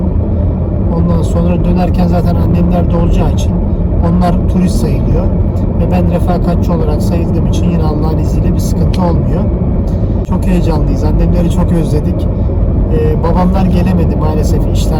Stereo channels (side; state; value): both; identical; correlation 1.00